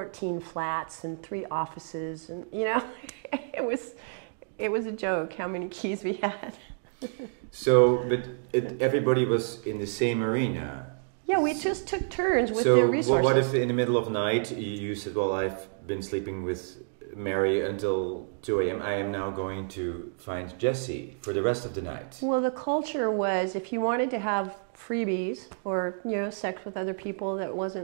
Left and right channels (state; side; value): silent; left; digital silence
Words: flats and 3 offices, and it was a joke how many keys we had. So, but everybody was in the same arena. Yeah, we just took turns with the resources. So, what if in the middle of the night you said, "Well, I've been sleeping with Mary until 2 a.m. I am now going to find Jesse for the rest of the night"? Well, the culture was, if you wanted to have freebies or sex with other people that